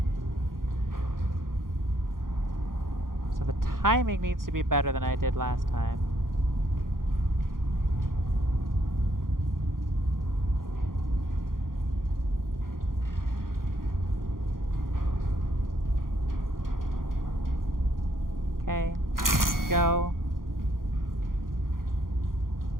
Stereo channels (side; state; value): left; late; 0.91 ms